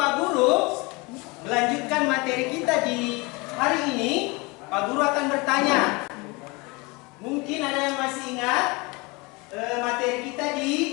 Guru melanjutkan materi kita di hari ini, Pak Guru akan bertanya. Mungkin ada yang masih ingat materi kita di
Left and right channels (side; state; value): right; quieter; 26.4 dB